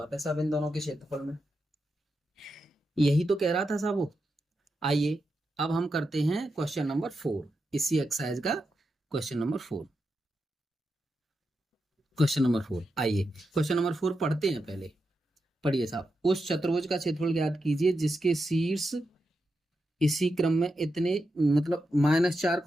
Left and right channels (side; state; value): both; normal; correlation 0.87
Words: है साहब इन दोनों के क्षेत्रफल में, यही तो कह रहा था साहब वो। आइए अब हम करते हैं क्वेश्चन नंबर 4, इसी एक्सरसाइज का क्वेश्चन नंबर 4। आइए क्वेश्चन नंबर 4 पढ़ते हैं। पहले पढ़िए साहब, उस चतुर्भुज का क्षेत्रफल ज्ञात कीजिए जिसके शीर्ष इसी क्रम में इतने, मतलब -4,